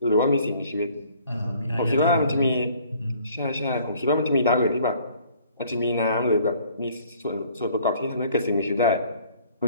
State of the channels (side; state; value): both; inverted; correlation -0.57